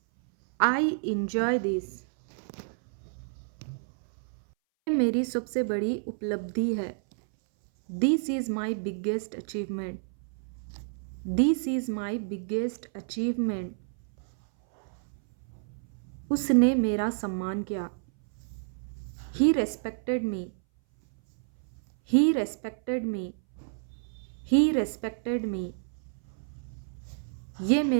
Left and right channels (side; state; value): left; silent; 58 dB below the other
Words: I enjoy this. मेरी सबसे बड़ी उपलब्धि है। This is my biggest achievement. This is my biggest achievement. उसने मेरा सम्मान किया। ही respected me. He respected me. He respected me. ये